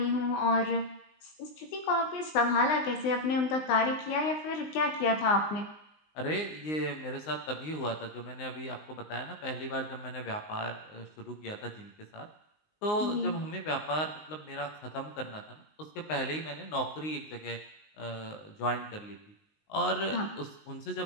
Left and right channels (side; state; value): right; late; 19 ms